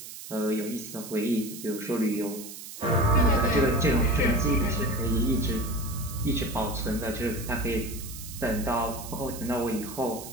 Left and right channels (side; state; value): right; noise; hiss, 12 dB below the sound